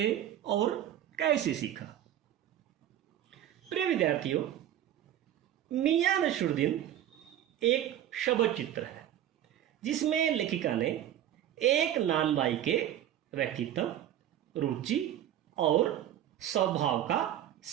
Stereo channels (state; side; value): quieter; left; 11.5 dB